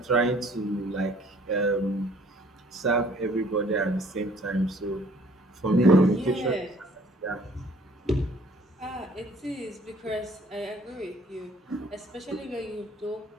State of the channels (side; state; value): both; normal; correlation 0.57